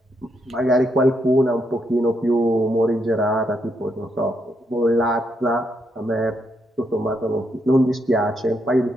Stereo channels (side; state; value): both; normal; correlation 0.78